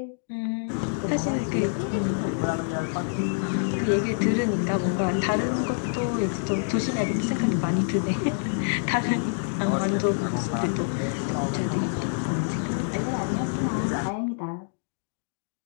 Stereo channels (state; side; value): silent; right; digital silence